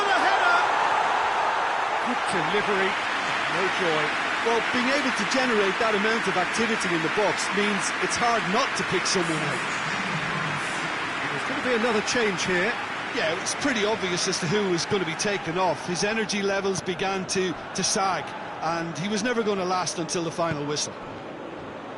header! Good delivery. No joy. Well, being able to generate that amount of activity in the box means it's hard not to pick someone out. There's going to be another change here. Yeah, it was pretty obvious as to who was going to be taken off. His energy levels began to sag, and he was never going to last until the final whistle.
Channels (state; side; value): identical; both; correlation 1.00